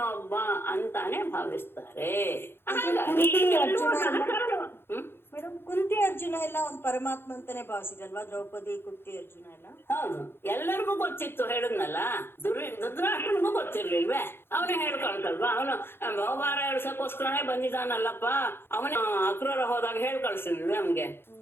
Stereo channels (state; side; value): late; right; 0.11 ms